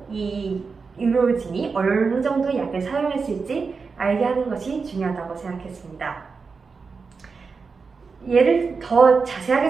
이 의료진이 어느 정도 약을 사용했을지 알게 하는 것이 중요하다고 생각했습니다. 예를 더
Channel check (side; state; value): left; quieter; 4.9 dB